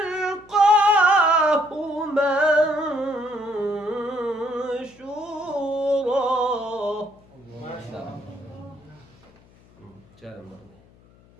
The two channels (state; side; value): noise; left; hum, 28 dB below the sound